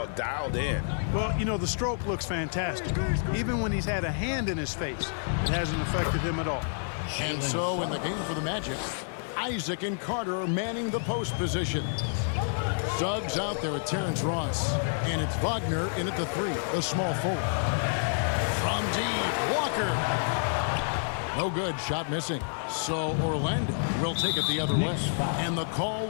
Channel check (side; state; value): right; silent; 59 dB below the other